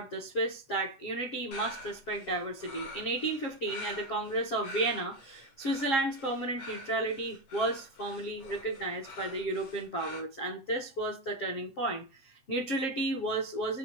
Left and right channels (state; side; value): late; right; 7.5 ms